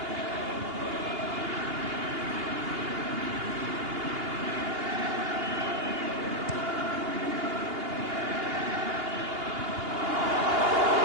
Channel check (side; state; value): left; late; 2.8 ms